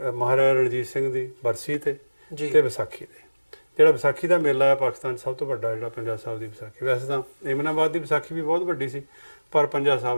ਰਣਜੀਤ ਸਿੰਘ ਦੀ ਬਰਸੀ ਤੇ ਵਿਸਾਖੀ ਤੇ। ਜਿਹੜਾ ਵਿਸਾਖੀ ਦਾ ਮੇਲਾ ਹੈ ਪਾਕਿਸਤਾਨ 'ਚ ਸਭ ਤੋਂ ਵੱਡਾ, ਜਿਹੜਾ ਪੰਜਾ ਸਾਹਿਬ ਦੀ ਵਿਸਾਖੀ। ਵੈਸੇ ਤਾਂ ਏਮਨਾਬਾਦ ਦੀ ਵਿਸਾਖੀ ਵੀ ਬਹੁਤ ਵੱਡੀ ਸੀ, ਪਰ ਪੰਜਾ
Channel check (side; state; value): both; inverted; correlation -1.00